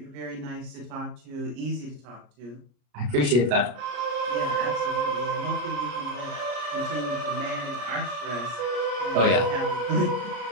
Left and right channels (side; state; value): left; late; 33 ms